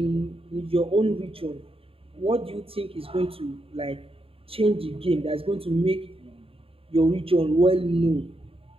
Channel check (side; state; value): left; late; 0.27 ms